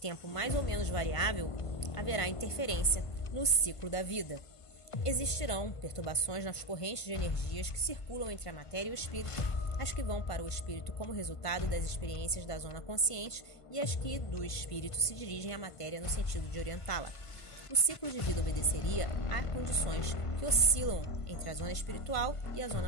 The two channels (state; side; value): late; right; 1.5 ms